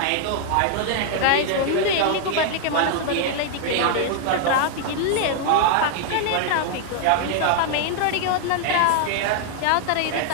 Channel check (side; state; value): both; different; correlation 0.00